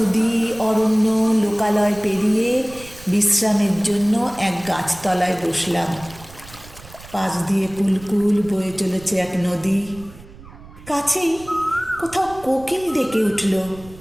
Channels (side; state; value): right; noise; rumble, 20 dB below the sound